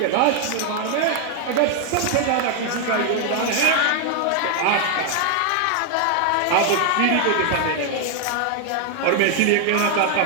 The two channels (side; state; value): both; different; correlation 0.00